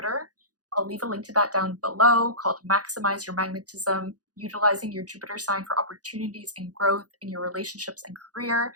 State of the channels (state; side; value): late; left; 0.68 ms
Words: I'll leave a link to that down below, called Maximize Your Magnetism, utilizing your Jupiter sign for opportunities and growth in your relationships and career.